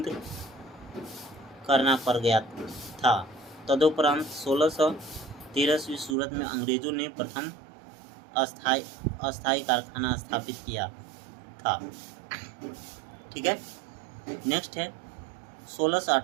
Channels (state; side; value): drops out; left; at 6.2 s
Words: करना पड़ गया था। तदुपरांत 1613 ईस्वी सूरत में अंग्रेजों ने प्रथम अस्थायी कारखाना स्थापित किया था। ठीक है। नेक्स्ट है